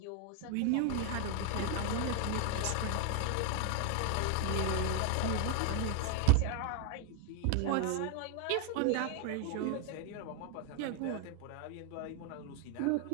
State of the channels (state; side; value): different; both; correlation 0.01